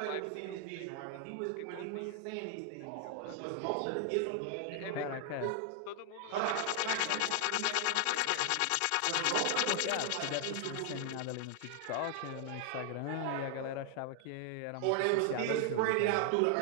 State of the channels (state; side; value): different; both; correlation 0.00